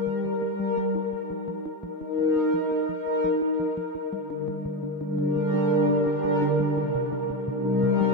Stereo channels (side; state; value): both; normal; correlation 0.15